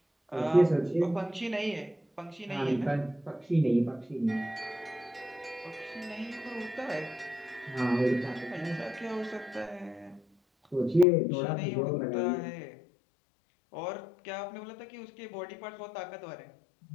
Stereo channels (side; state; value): right; drops out; at 11.1 s